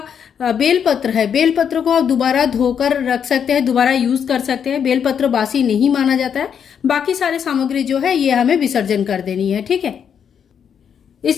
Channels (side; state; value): right; quieter; 7.8 dB